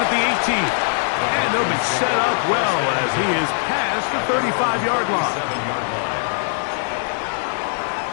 the 18. And they'll be set up well as he is past the 35-yard line.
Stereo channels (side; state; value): right; silent; digital silence